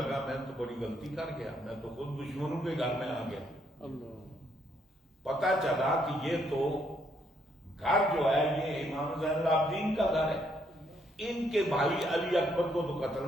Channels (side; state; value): both; normal; correlation 0.72